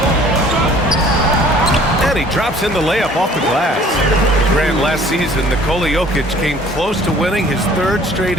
And he drops in the layup off the glass. Grant, last season, Nikola Jokic came close to winning his 3rd straight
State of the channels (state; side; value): normal; both; correlation 0.53